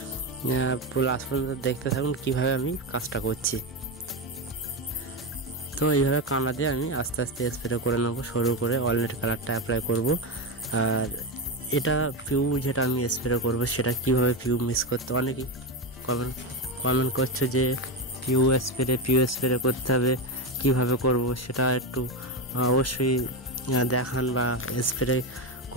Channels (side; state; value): both; normal; correlation 0.13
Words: পুরো লাস্ট পর্যন্ত দেখতে থাকুন কীভাবে আমি কাজটা করছি। তো এইভাবে কানা দিয়ে আমি আস্তে আস্তে স্প্রে করে নেবো, সরু করে ওয়ালনাট কালারটা অ্যাপ্লাই করব। আর এটা পিউ যেটা আমি স্প্রে করব সেটা কিভাবে পিউ মিক্স করতে, অনেকেই কমেন্ট করছে যে পিউ স্প্রে করতে হবে, কিভাবে করব সেটা একটু অবশ্যই দেখান, বা স্প্রে